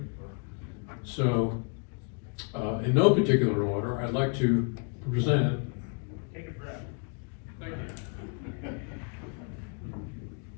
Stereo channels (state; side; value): quieter; right; 39.2 dB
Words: So, in no particular order, I'd like to present. Take a breath. Thank you.